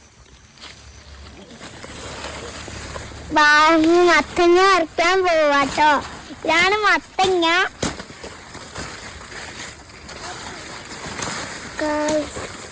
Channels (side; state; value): both; identical; correlation 1.00